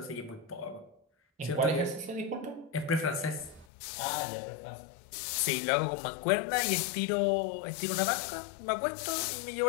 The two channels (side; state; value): right; drops out; at 3.7 s